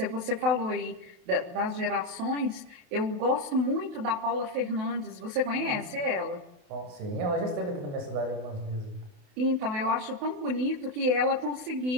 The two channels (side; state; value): left; late; 28 ms